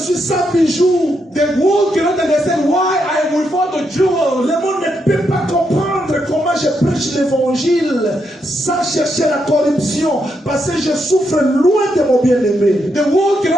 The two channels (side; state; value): both; normal; correlation 0.80